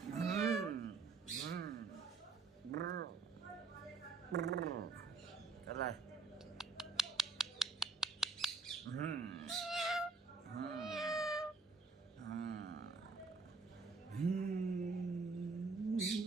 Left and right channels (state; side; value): quieter; left; 4.3 dB